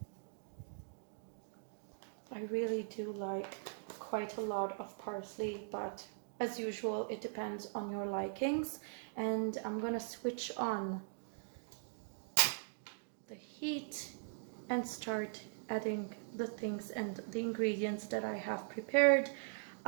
I really do like quite a lot of parsley, but as usual, it depends on your likings. And I'm gonna switch on the heat and start adding the things and the ingredients that I have prepared.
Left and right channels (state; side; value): silent; left; digital silence